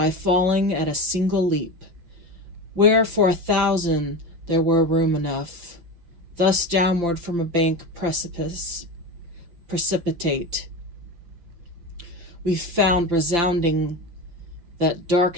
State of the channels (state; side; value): late; left; 5.8 ms